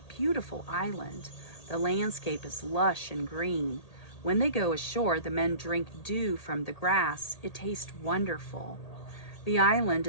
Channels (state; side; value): late; right; 1.8 ms